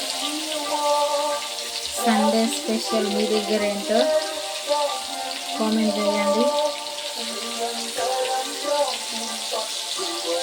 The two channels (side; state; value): both; identical; correlation 1.00